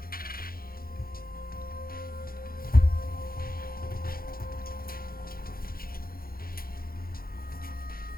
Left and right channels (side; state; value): right; late; 0.43 ms